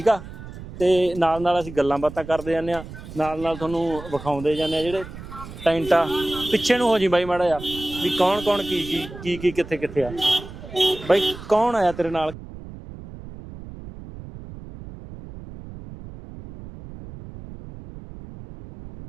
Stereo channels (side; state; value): right; noise; rumble, 14 dB below the sound